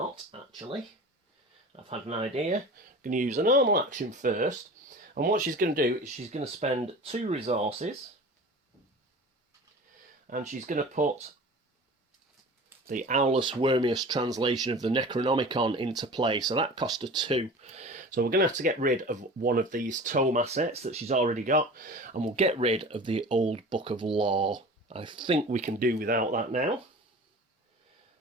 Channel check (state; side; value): normal; both; correlation 0.38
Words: actually. I've had an idea. Going to use a normal action first. And what she's going to do is she's going to spend 2 resources. And she's going to put the Owlus Wormius translation of the Necronomicon into play. So that cost her 2. So we're going to have to get rid of one of these tome assets that she's already got, and we'll get rid of the Old Book of Law. I think we can do without that now.